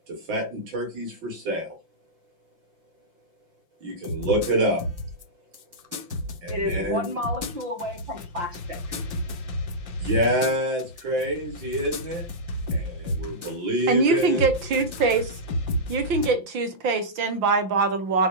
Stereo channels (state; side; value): late; left; 5.8 ms